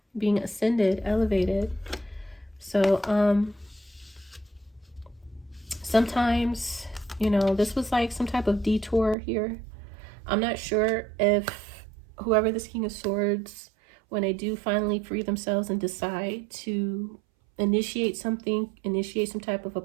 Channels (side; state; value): left; drops out; at 9.2 s